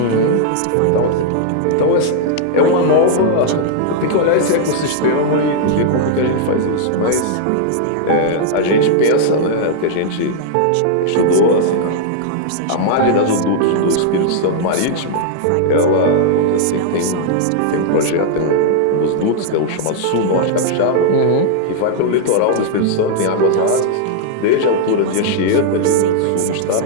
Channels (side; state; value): both; different; correlation -0.01